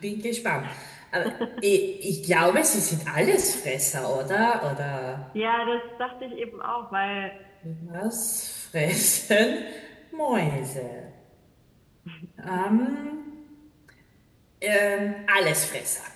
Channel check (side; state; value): both; identical; correlation 1.00